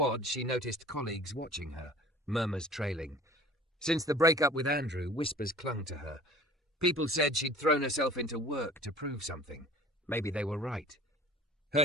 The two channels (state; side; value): normal; both; correlation 0.46